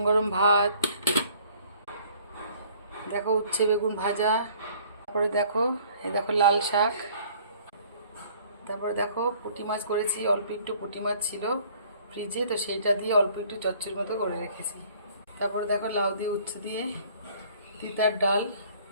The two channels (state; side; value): inverted; both; correlation -0.56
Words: গরম ভাত, দেখো উচ্ছে বেগুন ভাজা, তারপরে দেখো এই দেখো লাল শাক, তারপরে দেখো পুঁটি মাছ করেছি। অল্প একটু পুঁটি মাছ ছিল ফ্রিজে, তো সেইটা দিয়ে অল্প একটু চচ্চড়ির মতো করে রেখেছি। তারপরে দেখো লাউ দিয়ে উচ্ছে দিয়ে তিতার ডাল,